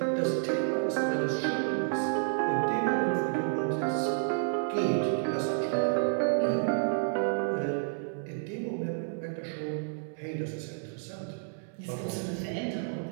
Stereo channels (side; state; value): left; silent; 58 dB below the other